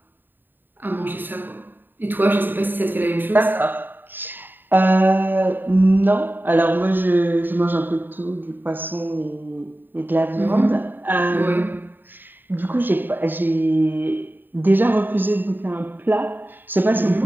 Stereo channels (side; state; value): left; late; 0.093 ms